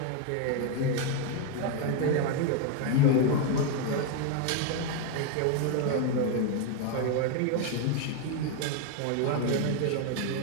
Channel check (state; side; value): different; both; correlation 0.01